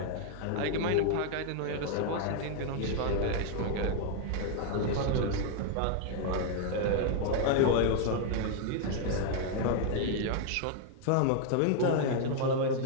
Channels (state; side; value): different; both; correlation 0.00